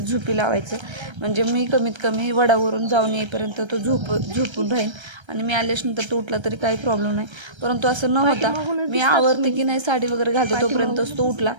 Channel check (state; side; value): late; left; 1.3 ms